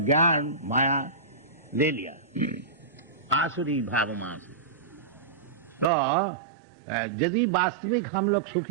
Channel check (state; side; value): drops out; left; at 5.9 s